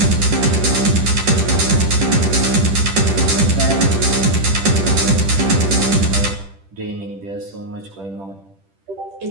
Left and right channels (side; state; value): left; late; 10 ms